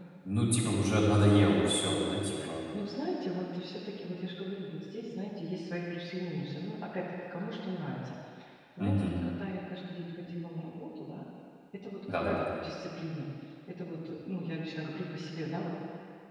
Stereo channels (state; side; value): identical; both; correlation 1.00